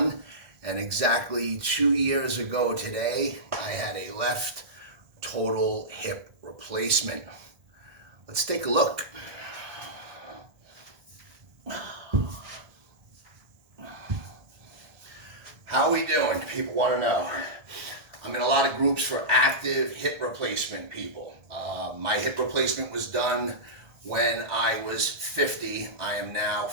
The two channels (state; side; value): late; left; 1.5 ms